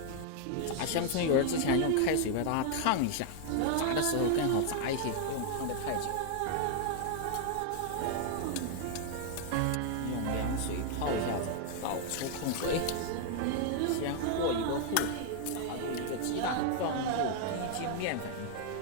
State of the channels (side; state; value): both; different; correlation 0.00